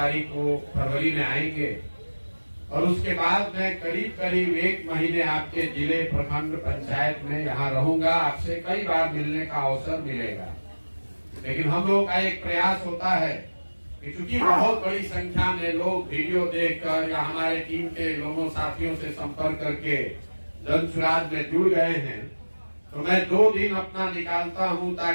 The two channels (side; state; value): both; inverted; correlation -1.00